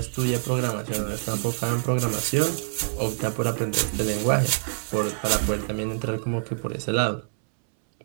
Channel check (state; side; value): silent; left; 61 dB below the other